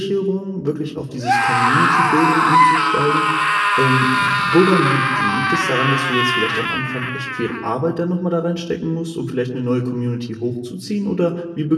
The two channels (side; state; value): both; identical; correlation 1.00